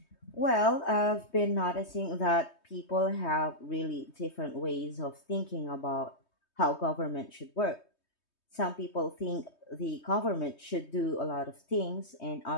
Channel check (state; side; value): late; right; 3.2 ms